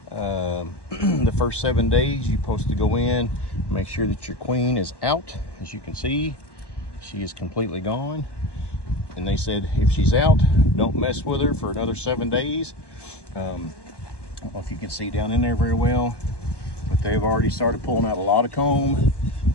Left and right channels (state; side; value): late; right; 1.2 ms